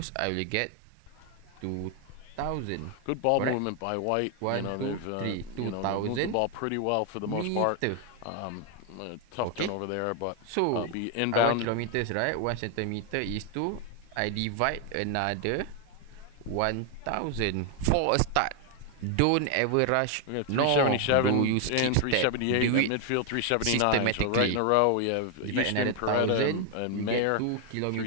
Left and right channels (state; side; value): different; both; correlation 0.00